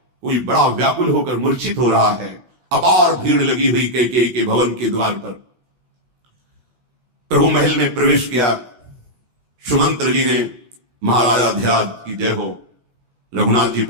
कोई बड़ा व्याकुल होकर मूर्छित हो रहा है। अपार भीड़ लगी हुई कैकेयी के भवन के द्वार पर। प्रभु महल में प्रवेश किया। सुमंत्र जी ने महाराजा ध्यान की जय हो, रघुनाथ जी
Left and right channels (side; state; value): left; late; 16 ms